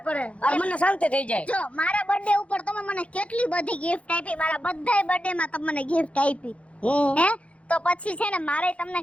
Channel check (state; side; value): late; right; 0.063 ms